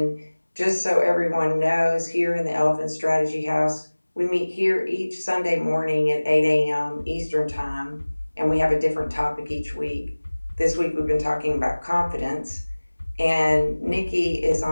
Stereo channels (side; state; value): both; inverted; correlation -1.00